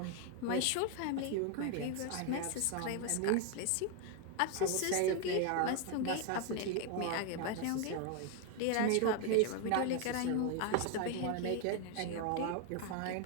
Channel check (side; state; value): both; different; correlation 0.00